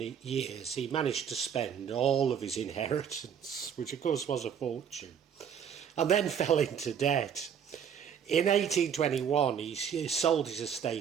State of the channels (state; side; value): quieter; left; 8.0 dB